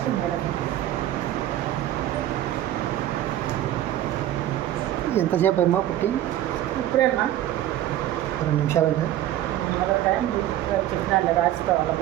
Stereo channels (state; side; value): quieter; left; 13.0 dB